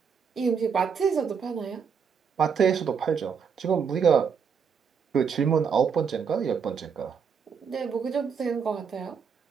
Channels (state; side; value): quieter; left; 6.4 dB